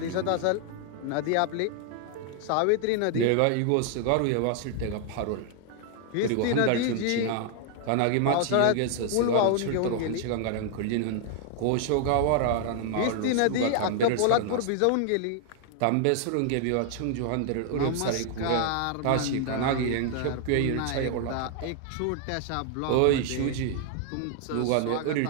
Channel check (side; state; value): both; different; correlation 0.00